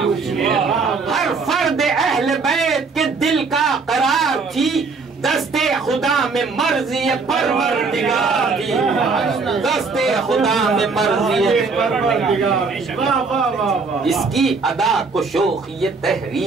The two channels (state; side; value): quieter; left; 4.5 dB